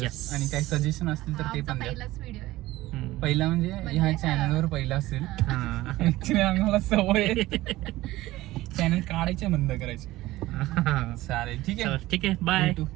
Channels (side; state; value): left; quieter; 17.4 dB